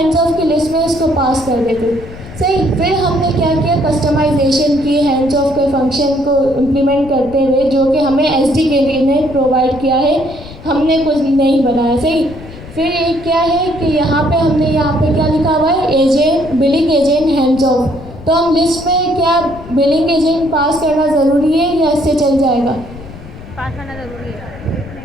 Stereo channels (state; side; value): noise; left; rumble, 16 dB below the sound